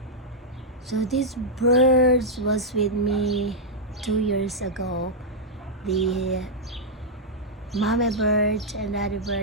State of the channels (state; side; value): normal; both; correlation -0.06